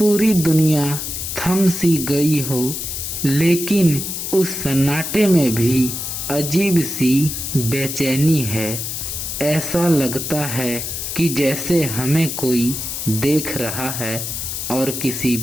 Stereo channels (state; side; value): noise; left; hiss, 5 dB below the sound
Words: दुनिया थम सी गई हो। लेकिन उस सन्नाटे में भी अजीब सी बेचैनी है। ऐसा लगता है कि जैसे हमें कोई देख रहा है और किसी